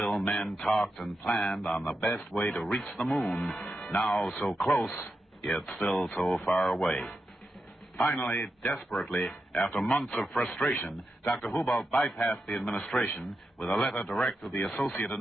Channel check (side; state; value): both; normal; correlation 0.87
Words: men talked and planned on the best way to reach the moon, now so close, yet still so far away. Finally, desperately, after months of frustration, Dr. Hubolt bypassed the administration with a letter direct to the Associate